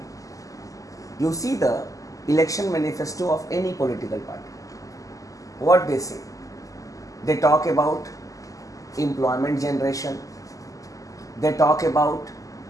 You see the election manifesto of any political party. What they say? They talk about employment generation. They talk about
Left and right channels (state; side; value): late; right; 0.16 ms